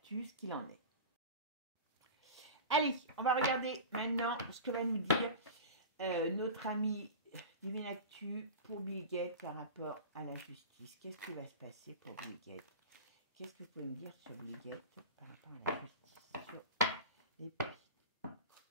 ce qu'il en est. Allez, on va regarder maintenant ce que va nous dire notre ami Divinactus pour Bill Gates par rapport à la justice. Qu'est-ce qui va se passer pour Bill Gates? Qu'est-ce que vous pouvez me dire sur Bill Gates par rapport à la justice, sur les pistes?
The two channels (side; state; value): both; inverted; correlation -0.30